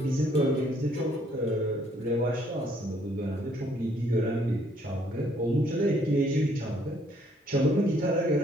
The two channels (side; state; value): both; normal; correlation 0.65